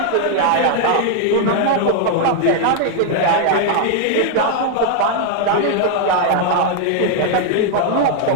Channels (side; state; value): both; different; correlation 0.00